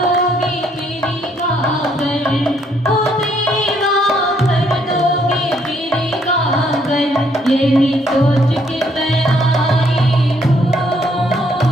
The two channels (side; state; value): both; normal; correlation 0.69